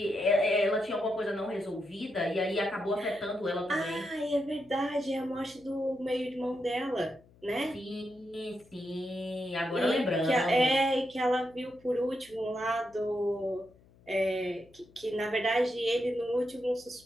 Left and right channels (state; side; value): noise; left; hum, 28 dB below the sound